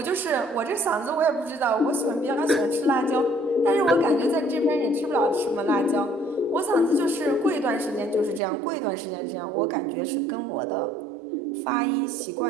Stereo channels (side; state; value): left; drops out; at 8.4 s